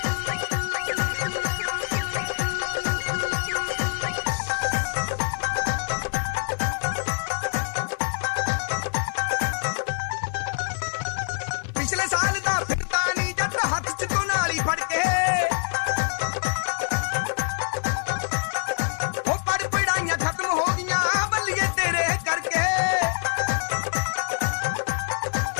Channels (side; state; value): right; silent; 57 dB below the other